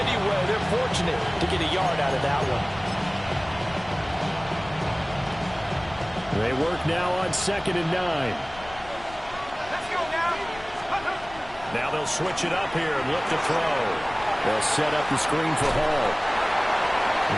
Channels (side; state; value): left; noise; rumble, 19 dB below the sound